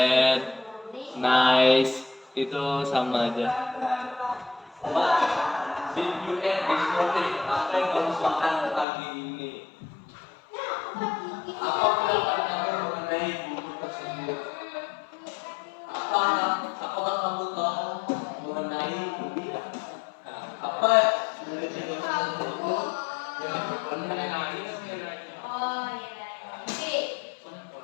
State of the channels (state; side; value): drops out; right; at 8.8 s